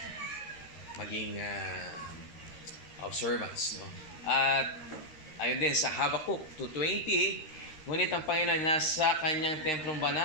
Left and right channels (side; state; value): right; late; 13 ms